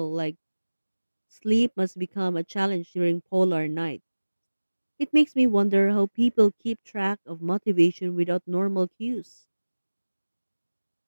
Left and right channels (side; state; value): both; inverted; correlation -1.00